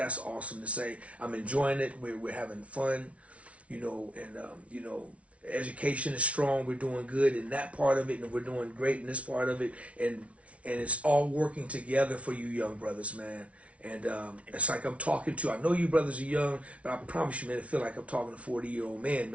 awesome to say. I'm enjoying it. We're having fun, and education is strong. We're doing good in that part of it, and we're doing great in this part of it, and it's all working together for you young brothers, man. And it's like I'm talking to, I know you brothers are young, but I promise you, man, I feel like I'm talking to a 40-year-old man,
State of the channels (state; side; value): late; left; 0.063 ms